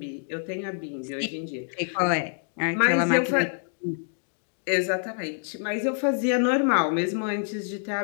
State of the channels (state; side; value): silent; right; digital silence